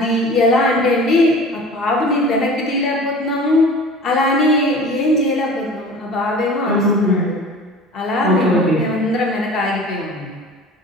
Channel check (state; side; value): normal; both; correlation 0.40